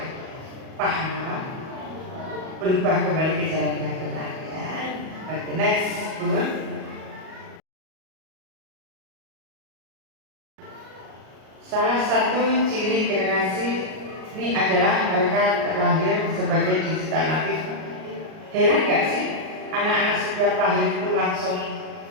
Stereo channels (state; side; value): late; left; 38 ms